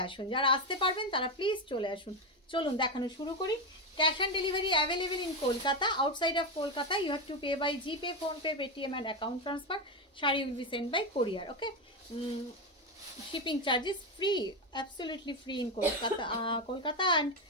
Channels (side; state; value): both; normal; correlation 0.12